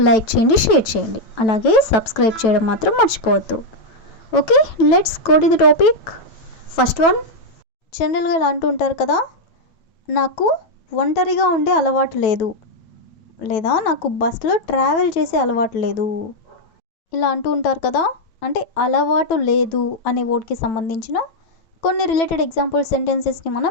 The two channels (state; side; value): late; right; 9.1 ms